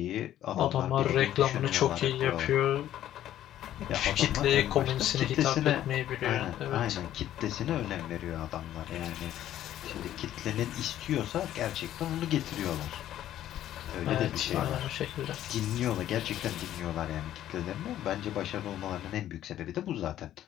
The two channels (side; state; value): right; quieter; 12.3 dB